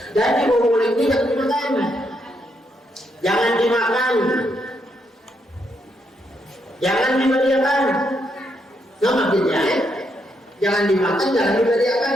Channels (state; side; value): normal; both; correlation 0.78